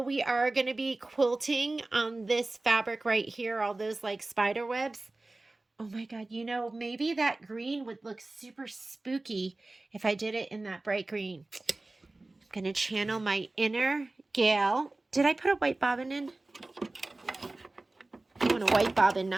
we are going to be quilting on this fabric right here, all those like spider webs. Oh my God, you know, maybe that green would look super spooky if I did it in that bright green. I'm going to channel my inner gal. Did I put a white bobbin in? I want a white bobbin,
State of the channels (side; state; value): left; quieter; 3.0 dB